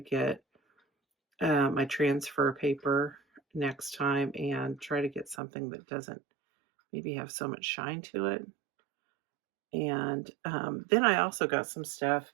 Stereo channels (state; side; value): drops out; left; at 5.4 s